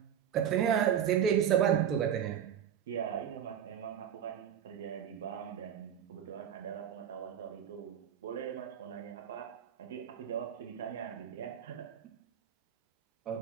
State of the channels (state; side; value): quieter; left; 9.1 dB